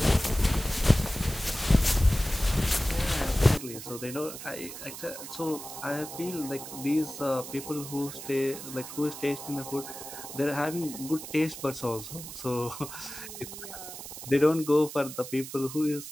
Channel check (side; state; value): right; noise; hiss, 11 dB below the sound